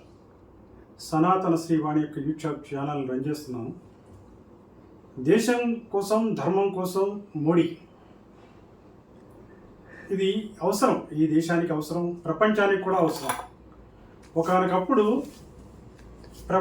సనాతన శ్రీవాణి యొక్క YouTube channel run చేస్తున్నాను. దేశం కోసం, ధర్మం కోసం మోడీ ఇది అవసరం, ఈ దేశానికి అవసరం, ప్రపంచానికి కూడా అవసరం. ఒకనొకప్పుడు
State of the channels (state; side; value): identical; both; correlation 1.00